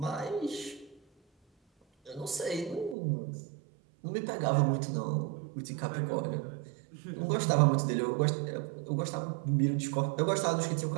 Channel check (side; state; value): left; drops out; at 3.0 s